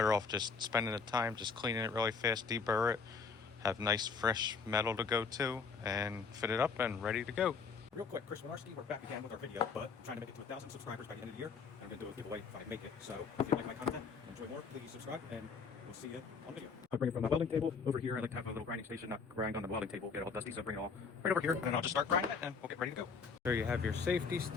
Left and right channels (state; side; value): quieter; right; 5.4 dB